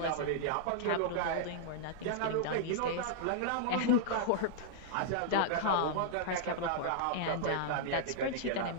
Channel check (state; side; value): different; both; correlation -0.01